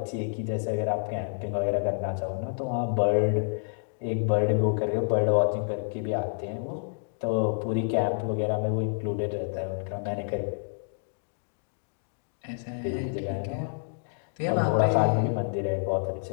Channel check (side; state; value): right; silent; digital silence